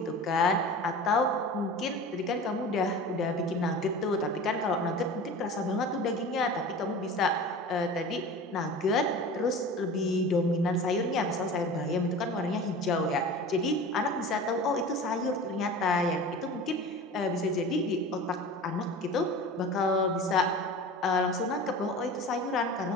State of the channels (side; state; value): both; normal; correlation 0.36